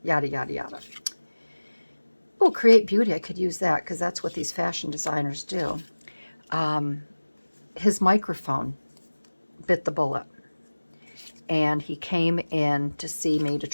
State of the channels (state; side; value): inverted; both; correlation -1.00